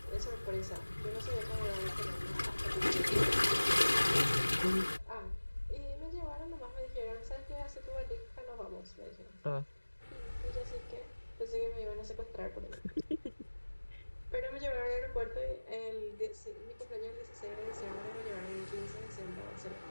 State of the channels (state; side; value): inverted; both; correlation -1.00